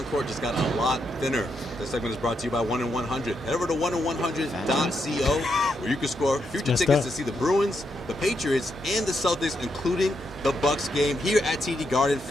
court just got a lot thinner. This segment is brought to you by 1-in-100. Head over to 1-in-100.co where you can score future tickets to see the Bruins, the Patriots, and the Celtics, including the Bucks game here at TD Garden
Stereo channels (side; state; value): both; normal; correlation 0.81